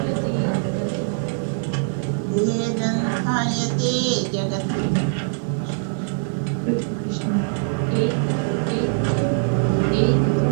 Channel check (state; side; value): silent; left; 60 dB below the other